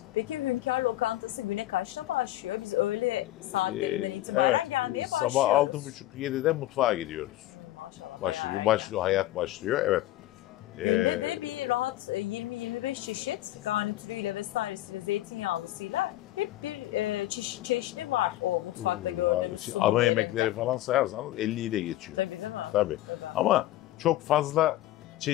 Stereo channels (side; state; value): right; quieter; 15.2 dB